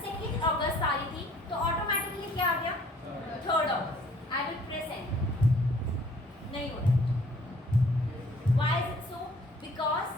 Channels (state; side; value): normal; both; correlation 0.57